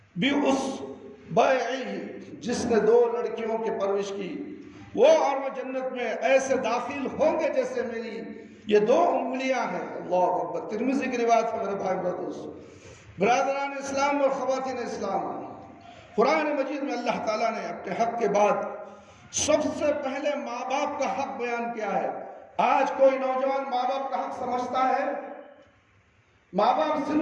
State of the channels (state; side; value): identical; both; correlation 1.00